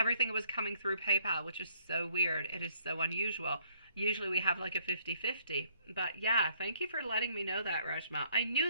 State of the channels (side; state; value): both; inverted; correlation -0.65